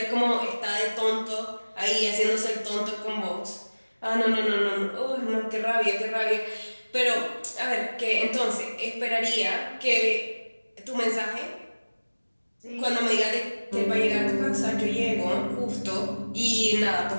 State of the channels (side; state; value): both; inverted; correlation -1.00